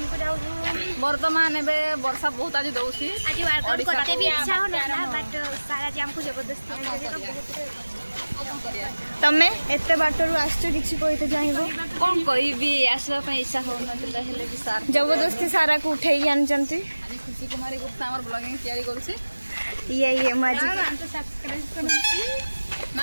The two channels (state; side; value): inverted; both; correlation -1.00